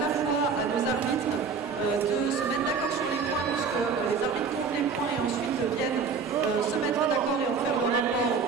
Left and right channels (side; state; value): left; quieter; 5.4 dB